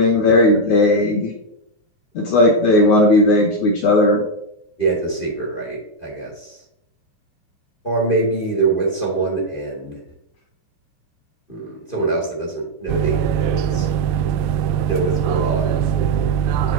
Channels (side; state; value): right; late; 2.5 ms